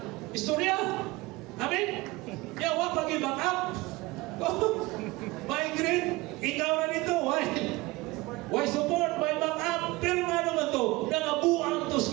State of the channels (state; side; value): quieter; left; 21.5 dB